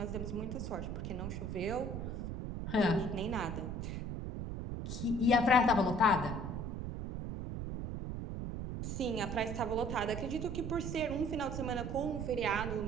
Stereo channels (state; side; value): noise; right; rumble, 4 dB below the sound